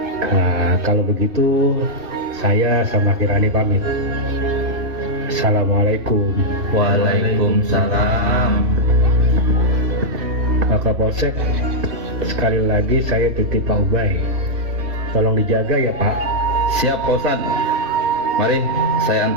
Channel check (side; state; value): left; late; 3.2 ms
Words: Nah, kalau begitu, saya sama Kirani pamit. Assalamualaikum. Waalaikumsalam. Pak Kapolsek, sekali lagi saya titip Pak Ubay. Tolong dijaga ya Pak. Siap Pak Ustadz. Mari saya